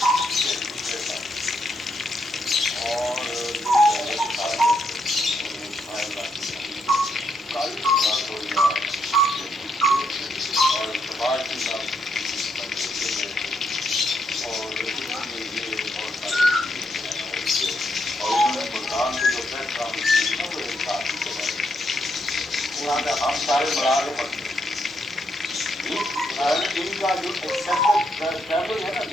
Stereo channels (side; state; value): both; normal; correlation 0.78